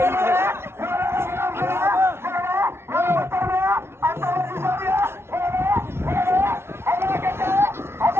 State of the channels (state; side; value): late; left; 0.12 ms